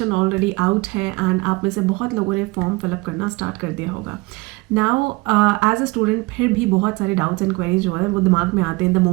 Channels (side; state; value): left; quieter; 23.9 dB